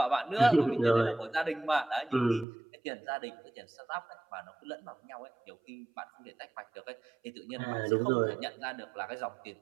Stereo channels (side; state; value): left; drops out; at 2.5 s